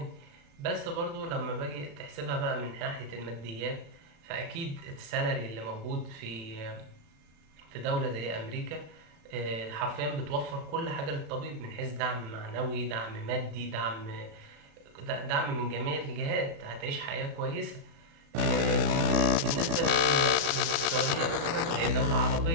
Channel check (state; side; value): late; left; 35 ms